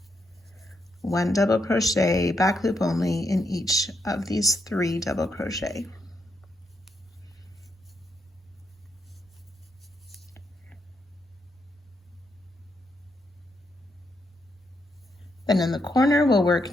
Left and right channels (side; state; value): both; normal; correlation 0.80